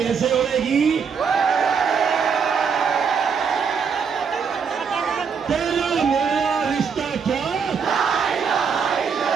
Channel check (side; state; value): left; quieter; 6.2 dB